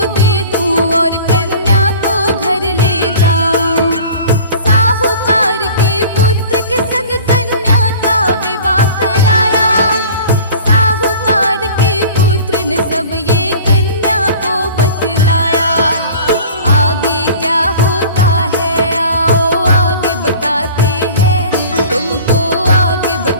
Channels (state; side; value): inverted; both; correlation -0.42